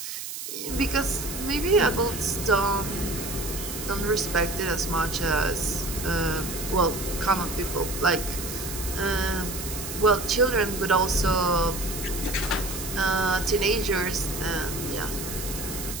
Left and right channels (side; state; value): right; noise; hiss, 7 dB below the sound